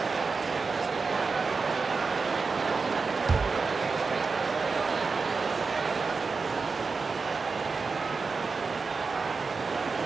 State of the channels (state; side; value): quieter; left; 4.6 dB